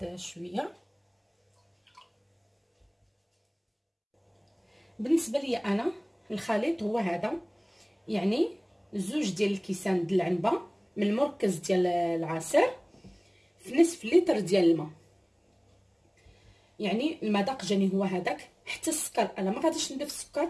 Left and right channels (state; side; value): identical; both; correlation 1.00